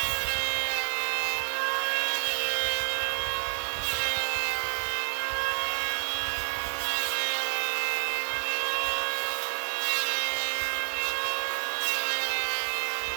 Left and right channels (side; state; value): left; silent; digital silence